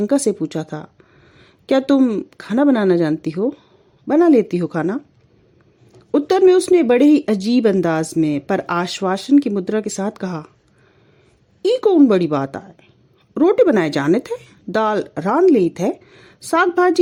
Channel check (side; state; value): both; identical; correlation 1.00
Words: से पूछा था, क्या तुम खाना बनाना जानती हो? बना लेती हो खाना? उत्तर में उसने बड़े ही अजीब अंदाज में पर आश्वासन की मुद्रा के साथ कहा, ई कौन बड़ी बात आए, रोटी बनाए जाने थे, दाल रान ली थे, साग